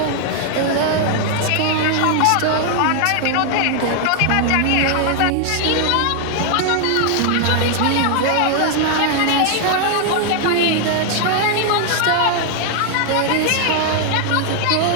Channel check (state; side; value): different; both; correlation 0.00